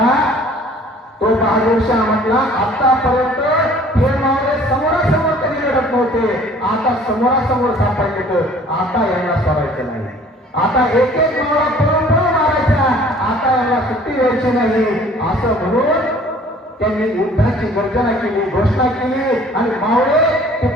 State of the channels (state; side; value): normal; both; correlation 0.53